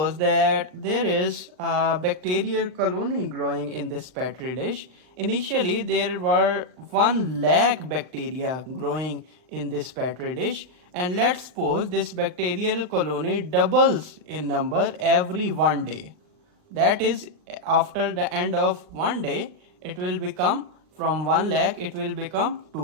that there is a bacterial colony growing in this petri dish. Initially, there were 1 lakh bacteria growing in this petri dish, and let's suppose this bacterial colony doubles in number every 1 day. That is, after the end of 1 day, it will become from 1 lakh, it will become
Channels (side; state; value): left; late; 39 ms